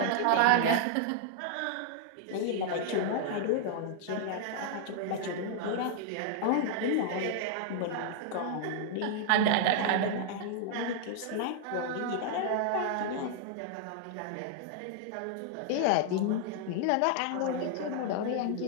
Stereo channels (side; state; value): both; different; correlation -0.01